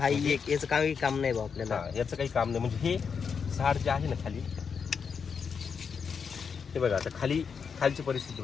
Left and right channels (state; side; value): quieter; right; 6.2 dB